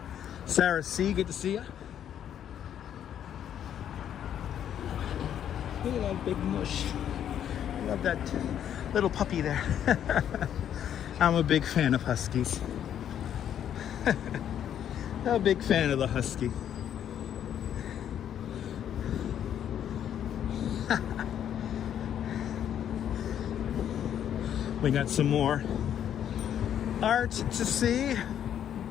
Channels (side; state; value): right; quieter; 9.8 dB